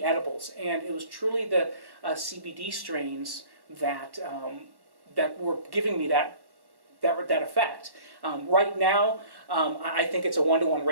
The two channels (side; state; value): left; late; 1.1 ms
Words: edibles, and it was truly the CBD strains that were giving me that effect. Right now, I think it's a 1-to-1